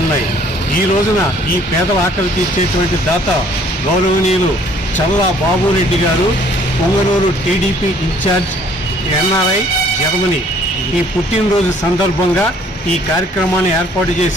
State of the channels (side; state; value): both; normal; correlation 0.59